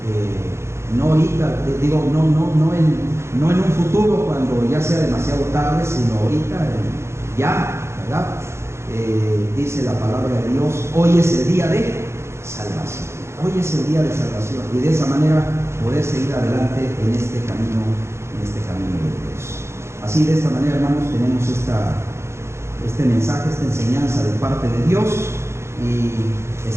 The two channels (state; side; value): late; left; 0.13 ms